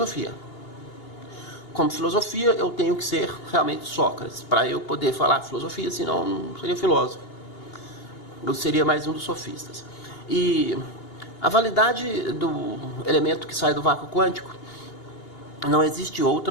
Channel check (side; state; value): right; late; 2.8 ms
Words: Como filosofia, eu tenho que ser realmente Sócrates, para eu poder falar filosofia, senão não seria filósofo. Eu seria mais um dos sofistas. E a validade do elemento que sai do vácuo quântico, não existe